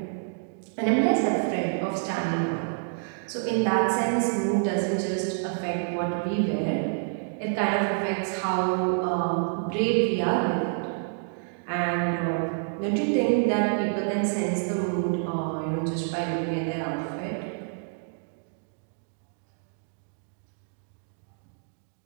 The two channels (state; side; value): silent; left; digital silence